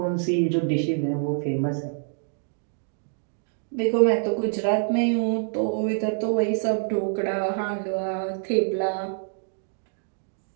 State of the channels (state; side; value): silent; left; digital silence